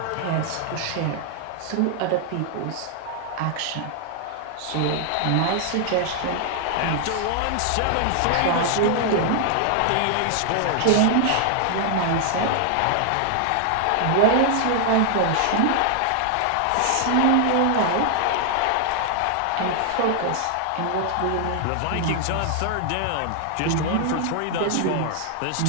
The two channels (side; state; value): both; different; correlation 0.00